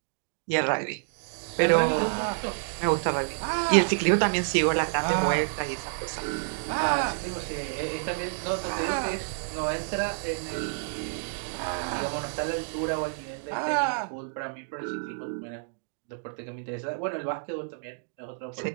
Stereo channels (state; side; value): silent; left; digital silence